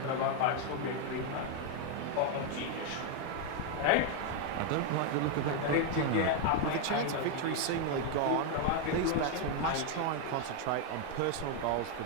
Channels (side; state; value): both; different; correlation 0.01